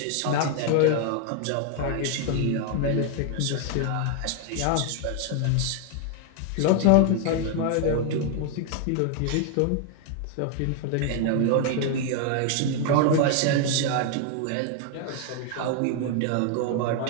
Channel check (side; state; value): both; different; correlation 0.00